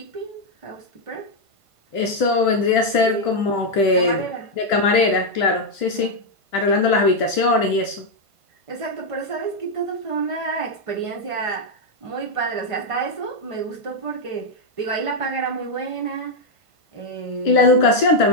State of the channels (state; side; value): late; left; 1.5 ms